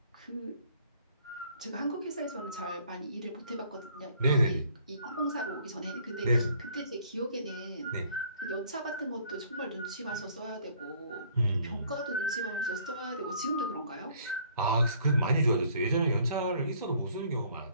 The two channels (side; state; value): both; inverted; correlation -0.59